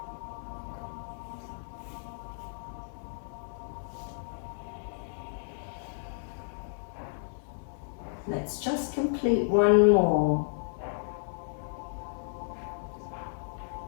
Let's just complete one more.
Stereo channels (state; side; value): silent; right; digital silence